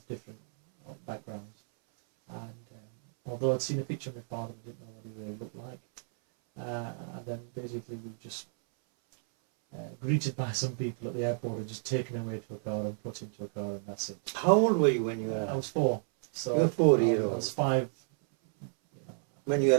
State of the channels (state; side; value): silent; left; 57 dB below the other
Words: different backgrounds. And although I'd seen a picture of my father, I didn't know what he really looked like. And then basically we were just greeted by some people at the airport and just taken away to a car and put into a car, and that's it. How old were you when you arrived? I was 4. So you were 4 years old. I was 5. When you